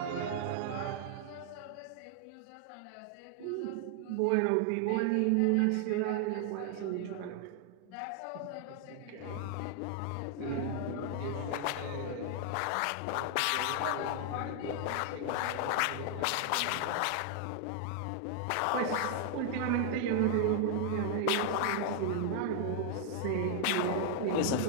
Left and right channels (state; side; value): different; both; correlation 0.00